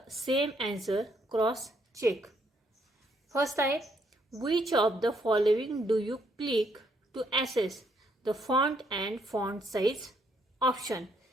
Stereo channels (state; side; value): normal; both; correlation 0.72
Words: same answer, cross check. First आहे, which of the following do you click to access the font and font size option.